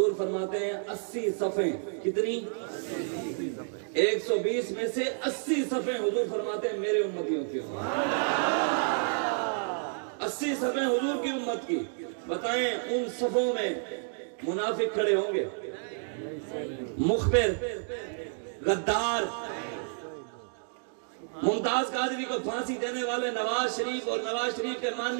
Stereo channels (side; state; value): left; silent; digital silence